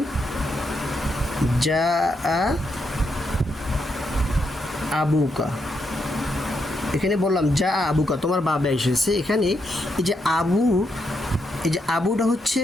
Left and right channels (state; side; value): normal; both; correlation 0.80